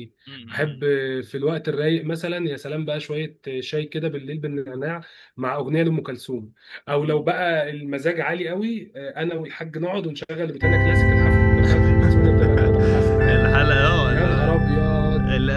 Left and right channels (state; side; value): identical; both; correlation 1.00